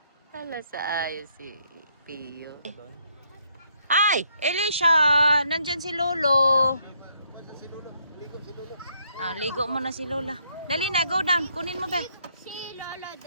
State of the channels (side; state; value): both; inverted; correlation -0.72